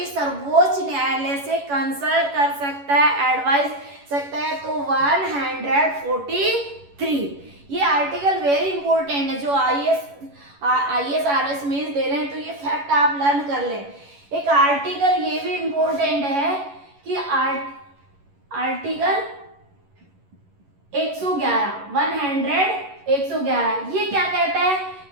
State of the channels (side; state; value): left; late; 11 ms